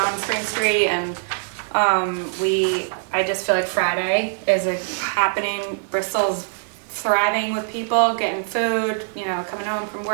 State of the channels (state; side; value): silent; left; digital silence